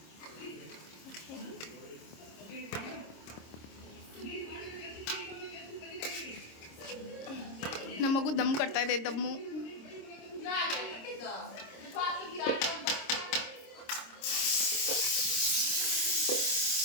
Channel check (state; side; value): late; right; 26 ms